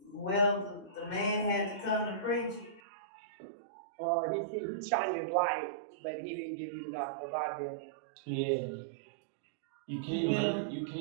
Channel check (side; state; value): left; drops out; at 2.8 s